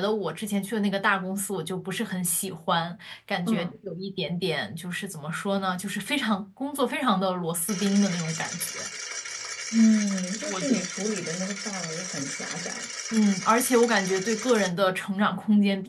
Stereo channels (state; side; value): identical; both; correlation 1.00